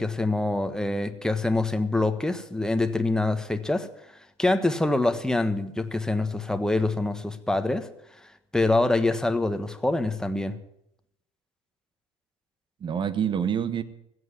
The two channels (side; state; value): both; normal; correlation 0.88